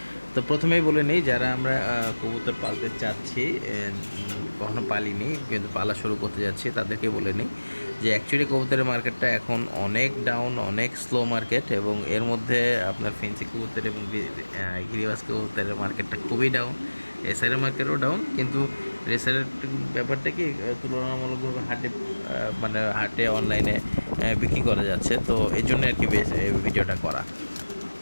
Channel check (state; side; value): inverted; both; correlation -1.00